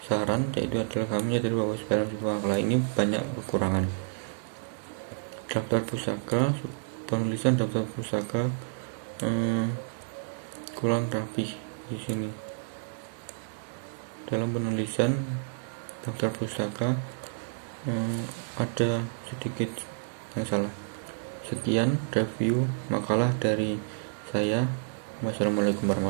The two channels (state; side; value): silent; left; 58 dB below the other